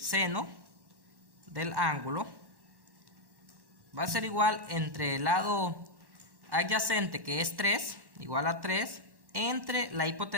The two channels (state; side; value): late; left; 1.1 ms